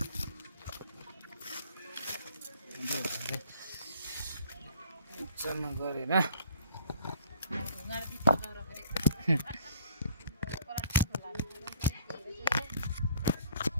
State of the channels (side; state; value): both; inverted; correlation -0.55